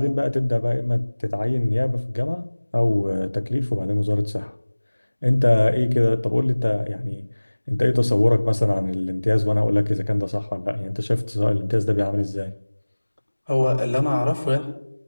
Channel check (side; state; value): both; inverted; correlation -1.00